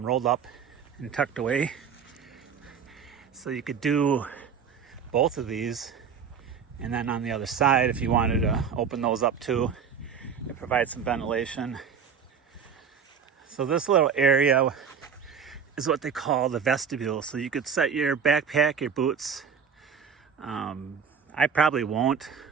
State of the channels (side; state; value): left; quieter; 6.7 dB